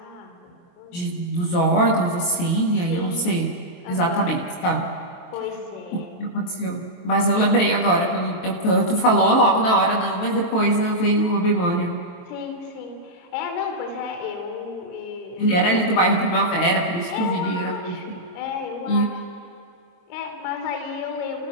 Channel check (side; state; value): right; late; 23 ms